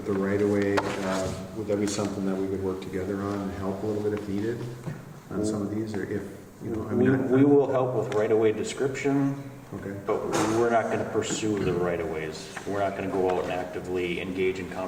right-of-way, would that be something that we could work together on and help a little bit if needed on some of these, or if, We will help with right-of-way description, Okay. but we're not going to pursue the right-of-ways. We're not going to go out and actively engage in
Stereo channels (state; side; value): identical; both; correlation 1.00